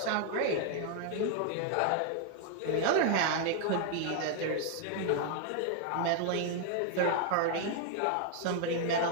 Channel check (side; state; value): both; different; correlation 0.00